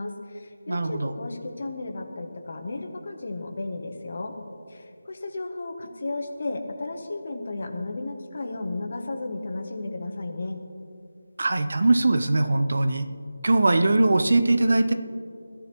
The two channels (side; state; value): both; inverted; correlation -0.96